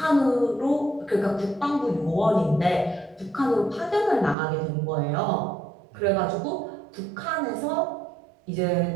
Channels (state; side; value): drops out; left; at 4.4 s